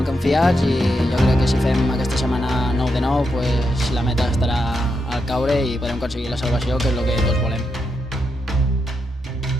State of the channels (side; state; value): both; normal; correlation 0.83